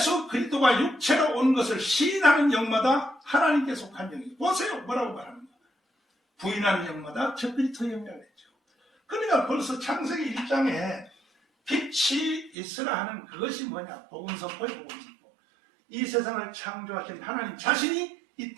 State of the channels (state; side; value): drops out; left; at 12.6 s